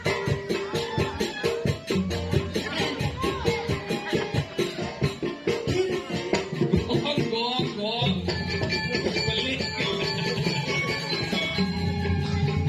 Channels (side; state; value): both; identical; correlation 1.00